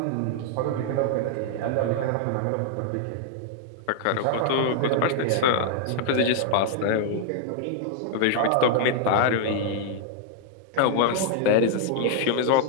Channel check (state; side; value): different; both; correlation 0.00